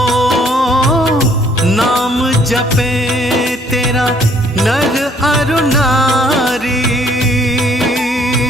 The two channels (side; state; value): both; normal; correlation 0.62